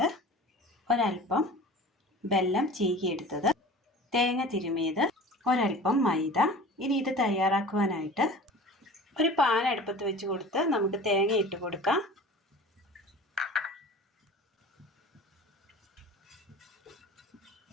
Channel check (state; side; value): normal; both; correlation 0.40